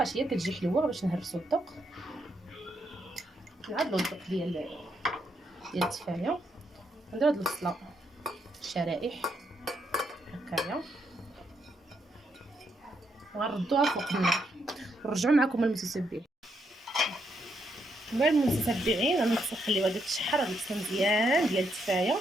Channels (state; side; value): normal; both; correlation 0.78